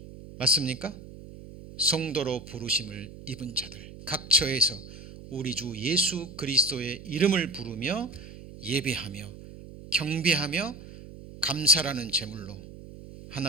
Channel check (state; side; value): noise; right; hum, 15 dB below the sound